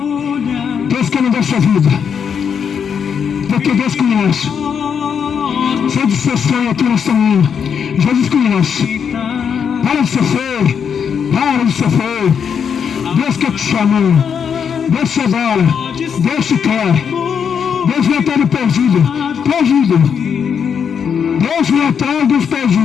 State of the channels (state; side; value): quieter; right; 7.2 dB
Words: Deus quer mudar sua vida. Porque Deus conhece. Sai de seu sonho aqui nesta manhã. Jesus conhece. Para de ser feio. Para de ser feio. Deus quer te chamar. Deus te adora. Deus te quer. Deus vem atrás do perdido. Perdido. Deus vem atrás dos